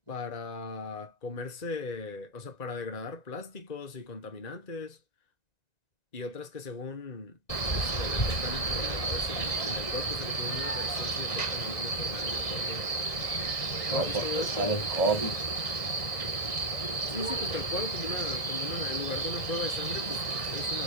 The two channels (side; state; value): right; late; 1.9 ms